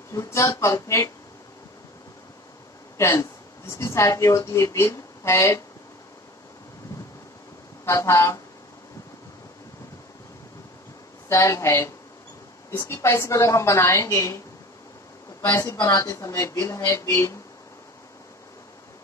फ्यूचर परफेक्ट टेंस, जिसकी सहायक क्रिया होती है विल, हैड तथा शैल हैव। इसकी पैसिव अगर हम बनाएंगे तो पैसिव बनाते समय विल हैव बीन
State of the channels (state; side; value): normal; both; correlation 0.39